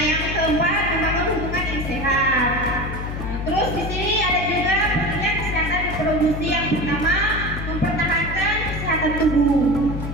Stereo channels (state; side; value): noise; left; hum, 6 dB below the sound